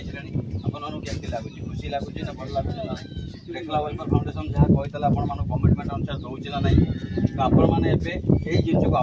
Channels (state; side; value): identical; both; correlation 1.00